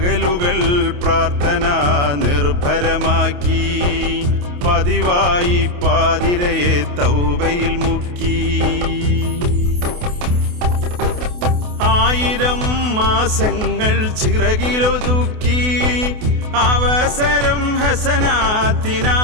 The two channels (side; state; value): left; late; 28 ms